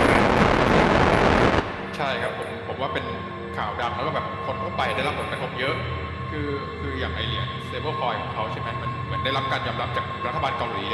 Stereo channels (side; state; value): both; identical; correlation 1.00